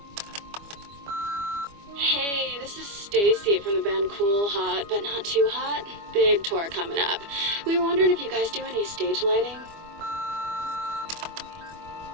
Hey, this is Stacy from the band Cool Hot, but not too hot. Big tour coming up. We were wondering if you guys do any stage lighting.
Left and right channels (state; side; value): late; left; 25 ms